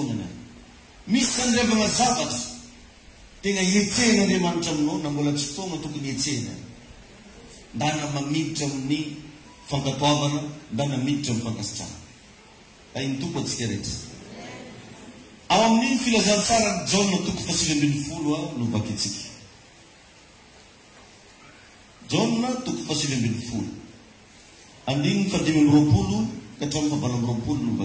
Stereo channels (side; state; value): both; identical; correlation 1.00